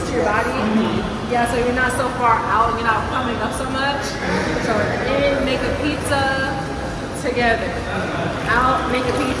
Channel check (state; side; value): identical; both; correlation 1.00